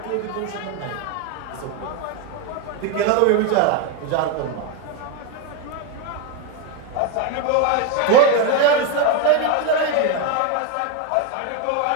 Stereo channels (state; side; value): different; both; correlation 0.02